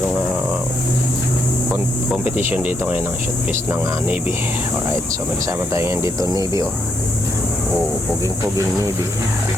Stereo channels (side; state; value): both; normal; correlation 0.77